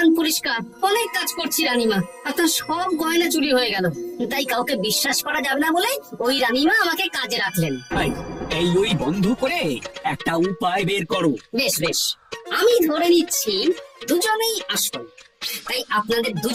পরিষ্কার, অনেক কাজ করছি রানীমা। আপনার সব গয়না চুরি হয়ে গেল, তাই কাউকে বিশ্বাস করা যাবে না বলে ওই রানীমা আমাকে কাজে রাখলেন। এই ওই বন্ধ করে একটা উপায় বের করো। বেশ বেশ, আমি ধরে নিচ্ছি দুজনেই আসল। তাই আপনাদের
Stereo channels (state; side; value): identical; both; correlation 1.00